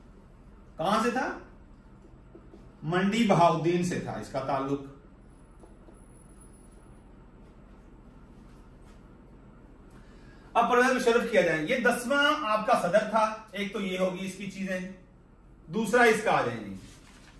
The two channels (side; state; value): both; identical; correlation 1.00